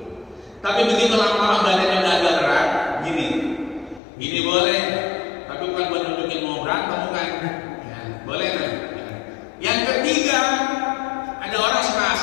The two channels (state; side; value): drops out; right; at 4.0 s